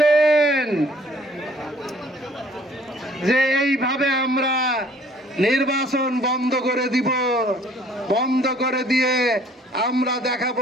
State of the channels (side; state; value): both; normal; correlation 0.56